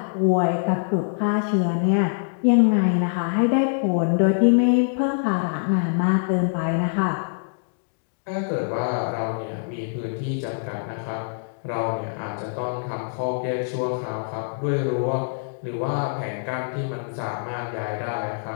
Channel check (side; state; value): right; silent; digital silence